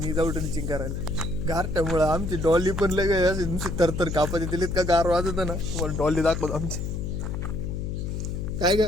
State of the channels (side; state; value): left; noise; hum, 3 dB below the sound